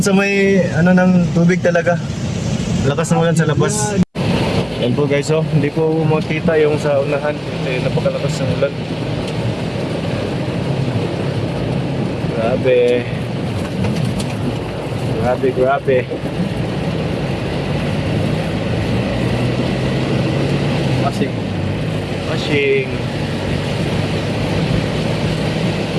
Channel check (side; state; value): both; identical; correlation 1.00